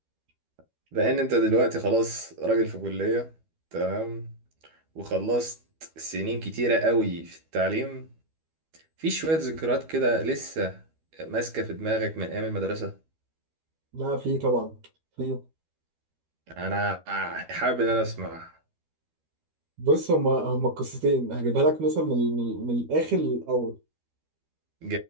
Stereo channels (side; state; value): left; late; 12 ms